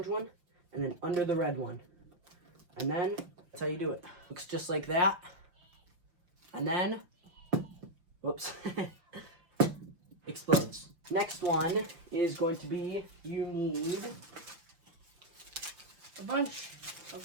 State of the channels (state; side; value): late; left; 6.0 ms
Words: one, and then under the red one. And then that's how you do it. Looks just like that. And then, whoops, explodes. Next one is going to be, you need a bunch of